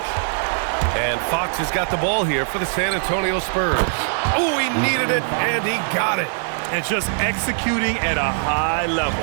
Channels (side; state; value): left; silent; digital silence